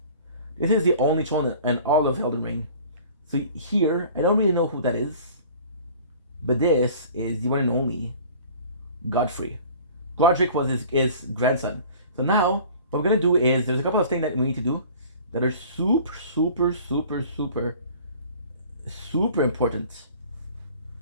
This is the only throne in all of Elden Ring. So here, I don't really know who that is, but this is the one and only Godfrey. Godric was his grandson. So now, what we're gonna do is there's a couple of things that we need to do that are super, super, super, super, super important.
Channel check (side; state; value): both; inverted; correlation -0.46